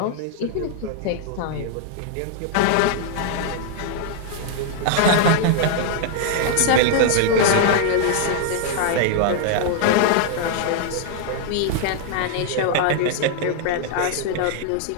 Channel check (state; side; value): different; both; correlation 0.00